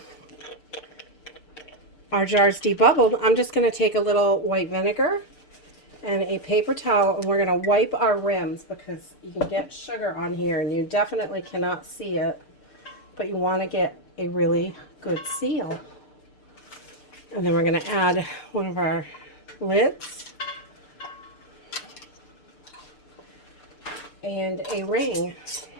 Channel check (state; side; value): late; right; 6.7 ms